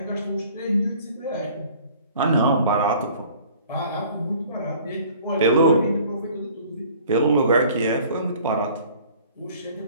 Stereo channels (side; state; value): both; inverted; correlation -0.52